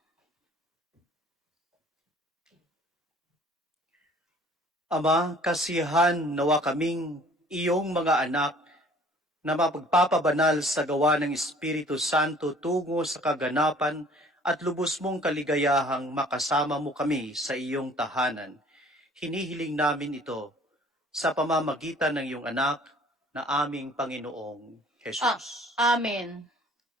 Ama, kasihan nawa kaming iyong mga anak na mapagpapabanal sa gawa ng Espiritu Santo tungo sa kaganapan at lubos mong kaligayahang makasama mo kami sa iyong tahanan. Hinihiling namin ito sa pamamagitan ng iyong anak na aming Panginoong Jesus. Amen.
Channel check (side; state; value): both; normal; correlation 0.53